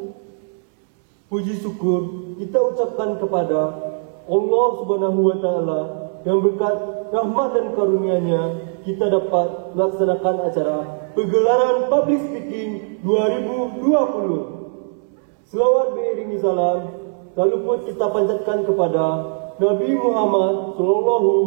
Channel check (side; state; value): left; silent; 64 dB below the other